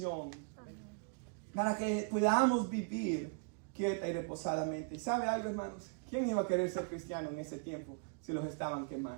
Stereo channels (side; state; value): left; quieter; 39.0 dB